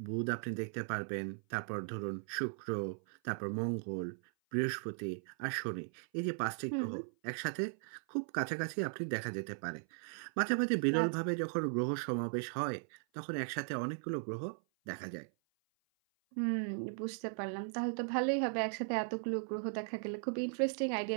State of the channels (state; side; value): silent; left; 53 dB below the other